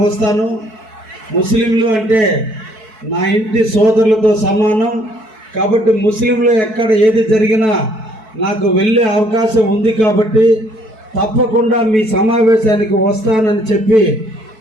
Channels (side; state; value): left; late; 4.6 ms